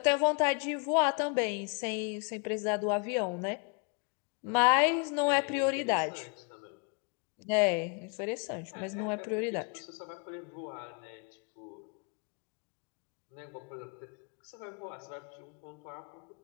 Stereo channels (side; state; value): right; quieter; 36.6 dB